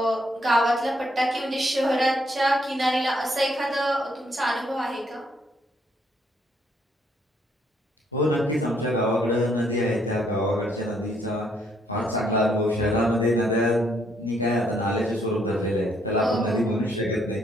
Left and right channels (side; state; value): both; normal; correlation 0.71